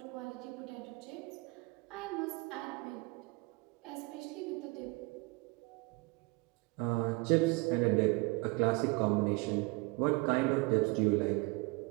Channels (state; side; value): quieter; left; 26.6 dB